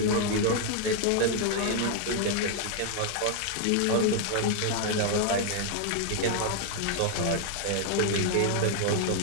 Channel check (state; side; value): different; both; correlation 0.00